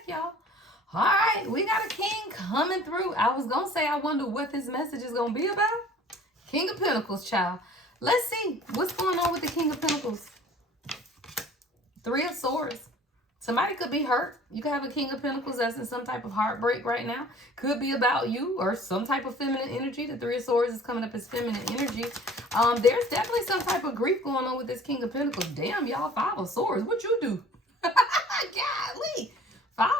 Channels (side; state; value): both; normal; correlation 0.49